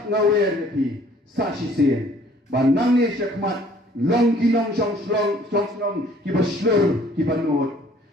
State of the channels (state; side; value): normal; both; correlation 0.57